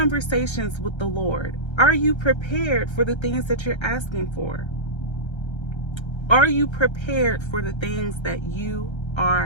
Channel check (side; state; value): right; late; 1.3 ms